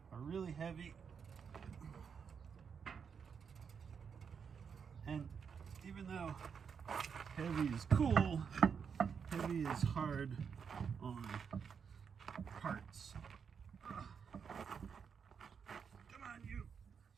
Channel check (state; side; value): quieter; left; 6.6 dB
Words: are really heavy. And even though heavy is cool, heavy is hard on parts. Come on, you.